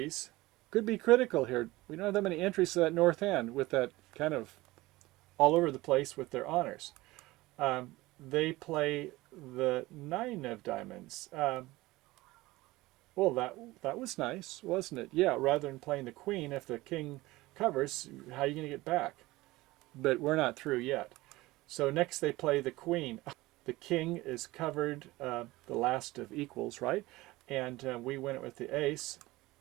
could be critical here. We don't have that many entries to that north hand with that kind of all over the place with their honors. They play the 9 of diamonds. Well, that was nice, wasn't it? Yeah, rather than playing the queen, if the king covers, how are you going to get back? But we're not through yet. So next they play the queen. The king is covered, the last of equals, right? And we win it with the ace.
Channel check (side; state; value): left; quieter; 19.5 dB